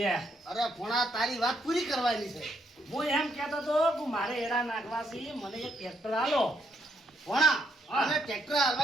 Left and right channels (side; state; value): both; normal; correlation 0.75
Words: અરે ભણા તારી વાત પૂરી કરવાની છે હું એમ કહેતો હતો કે મારે એડા નાખવા છે મને એક ટ્રેક્ટર આલો ભણા હા. અને ટ્રેક્ટર